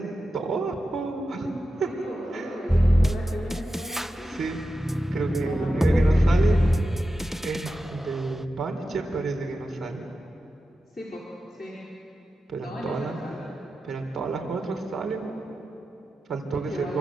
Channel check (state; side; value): normal; both; correlation 0.92